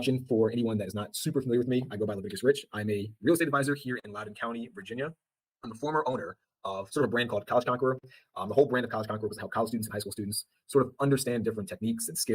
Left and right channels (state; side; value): identical; both; correlation 1.00